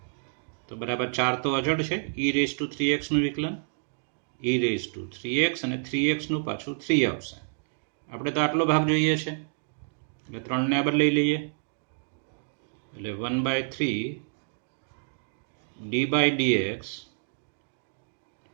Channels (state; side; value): silent; left; digital silence